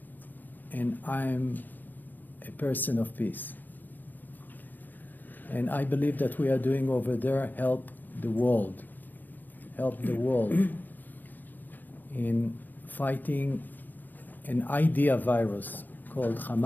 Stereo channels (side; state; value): right; late; 0.087 ms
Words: and I'm a person of peace, and I believe that we are doing over there help the world in fighting an idea virus called